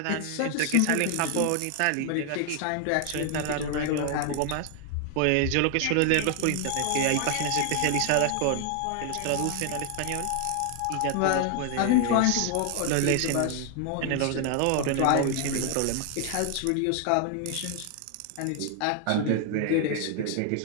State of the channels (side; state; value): both; different; correlation 0.00